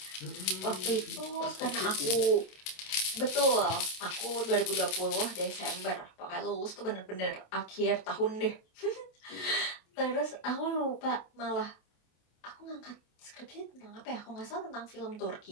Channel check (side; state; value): right; late; 27 ms